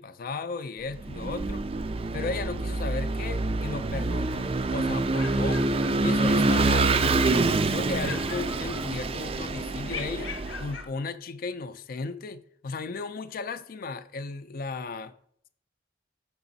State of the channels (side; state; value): both; normal; correlation 0.52